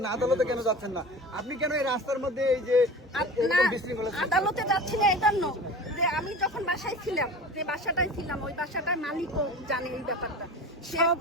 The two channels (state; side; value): normal; both; correlation 0.36